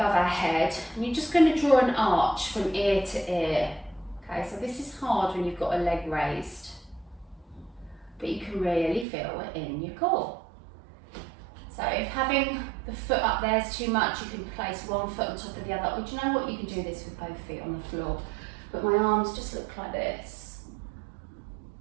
our head, and you're just going to draw an arch from ear to ear. Okay, so this is hard when you've got a leg raised, but you can really feel it in your core. So if having the foot up there is too much, you can place one foot on top of the other. Or do you know what? You can do this with both feet on the floor. But my arms just look like this.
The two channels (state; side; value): drops out; left; at 9.1 s